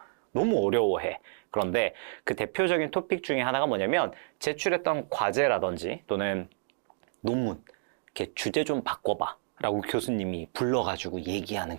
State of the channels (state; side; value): silent; left; digital silence